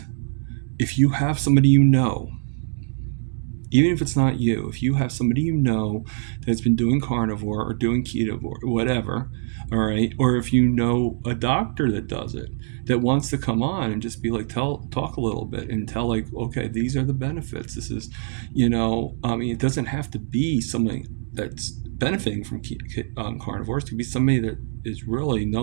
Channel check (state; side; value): silent; left; 63 dB below the other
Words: if you have somebody you know, even if it's not you, if you have somebody you know that's been doing carnivore or doing keto or whatever, all right, or if you know a doctor that does it, that wants to come on and just be like, talk a little bit and tell, like, okay, these are the benefits. This is, it doesn't have to be somebody that's benefiting from carnivores. It could be somebody that is really